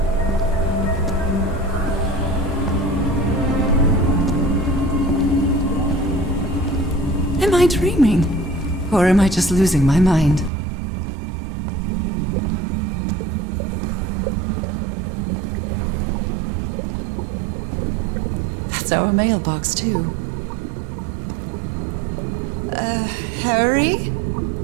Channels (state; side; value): drops out; left; at 10.5 s